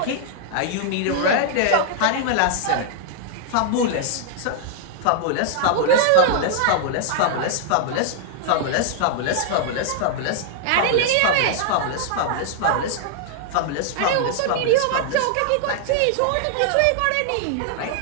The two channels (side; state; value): both; different; correlation -0.01